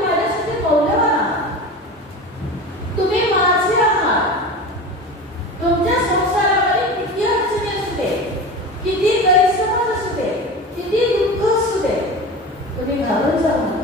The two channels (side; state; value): both; normal; correlation 0.30